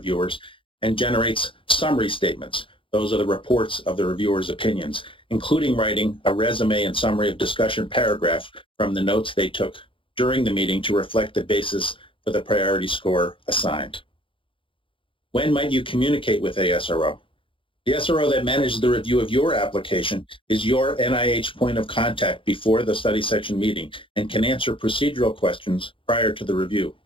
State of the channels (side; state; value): right; late; 0.25 ms